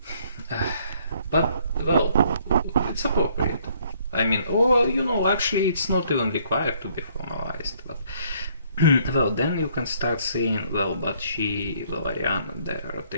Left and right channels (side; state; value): both; inverted; correlation -0.65